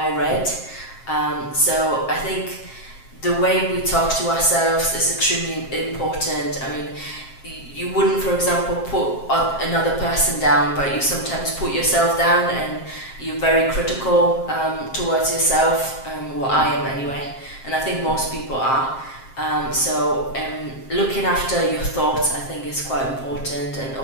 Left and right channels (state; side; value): late; right; 7.5 ms